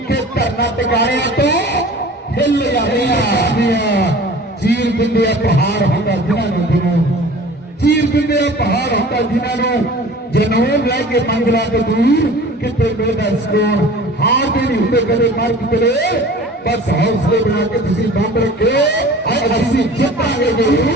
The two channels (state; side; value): normal; both; correlation 0.43